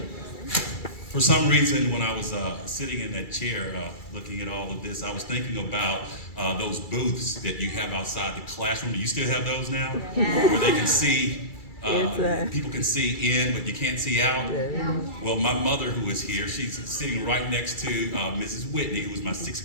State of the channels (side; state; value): right; late; 2.3 ms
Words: For some reason, when I was sitting in that chair looking at all of this, I was thinking about those booths that you have outside the classroom. Do you still have those now? Where they can see, people can see in, but you can't see out? Well, my mother, who is here, she's sitting right next to Mrs. Whitney, who was my